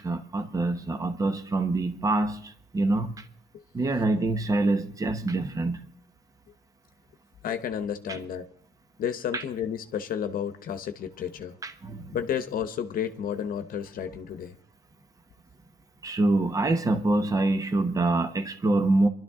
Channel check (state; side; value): normal; both; correlation 0.75